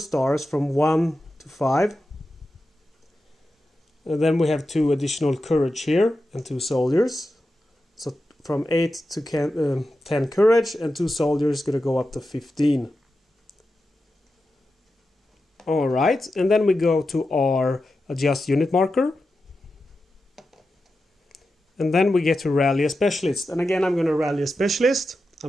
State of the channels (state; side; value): normal; both; correlation 0.91